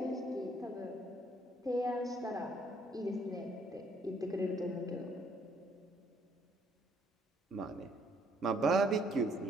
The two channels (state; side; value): normal; both; correlation 0.66